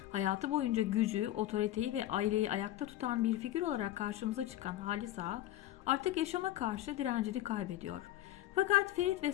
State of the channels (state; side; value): quieter; right; 14.2 dB